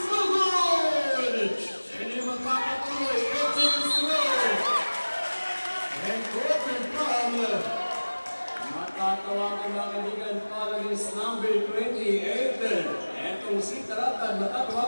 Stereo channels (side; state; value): both; inverted; correlation -1.00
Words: So good! And yung magpapatuloy, Regis Rowe. And quarter from matatawagan mga kaibigan, following is number 28. Etong si Taratad,